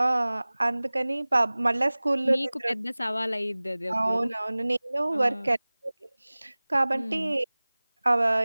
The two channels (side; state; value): both; inverted; correlation -1.00